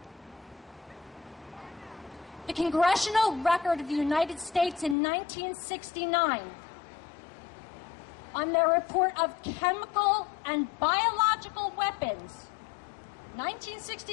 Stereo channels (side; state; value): right; drops out; at 5.0 s